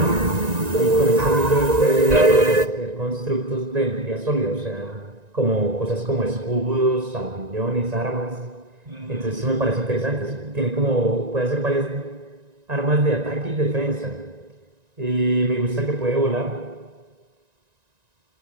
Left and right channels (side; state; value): left; late; 1.9 ms